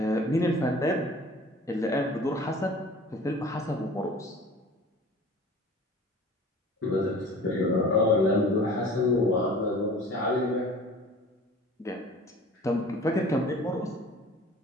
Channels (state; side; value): normal; both; correlation 0.44